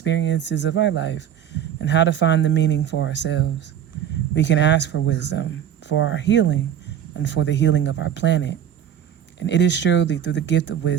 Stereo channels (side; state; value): left; quieter; 9.7 dB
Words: of our life and how to find the meaning for ourselves. We can ask for wisdom for our healing and for the healing of our planet. And it is surely through the gift of